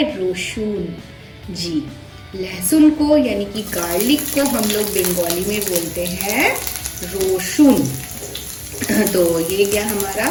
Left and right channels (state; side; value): identical; both; correlation 1.00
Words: रोशुन। जी, लहसुन को यानी कि गार्लिक को हम लोग बंगाली में बोलते हैं रोशुन। तो ये क्या हमारा